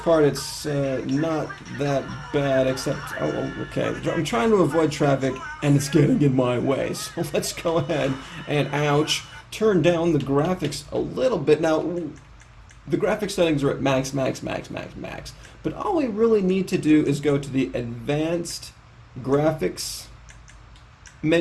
it's not that bad, except, oh, okay, I'm trying to avoid traffic and it's getting in my way, so let's go ahead and, ouch, turn down the graphics a little bit. Now, the graphics settings are at max, but all we really need to do is go to the advanced graphics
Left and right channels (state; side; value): identical; both; correlation 1.00